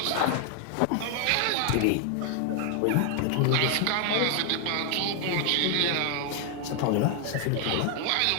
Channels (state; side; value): different; both; correlation 0.00